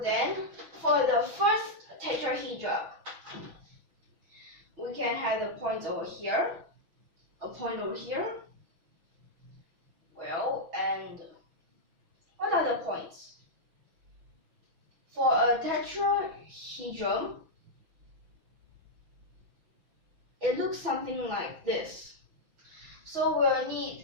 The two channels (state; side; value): late; left; 6.0 ms